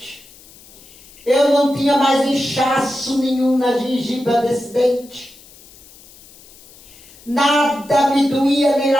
eu não tinha mais inchaço nenhum na gengiva desse dente. Nada me doía nem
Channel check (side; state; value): left; noise; hiss, 23 dB below the sound